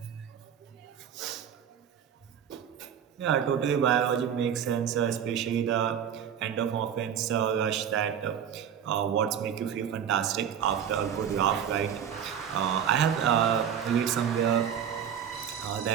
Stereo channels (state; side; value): quieter; left; 8.6 dB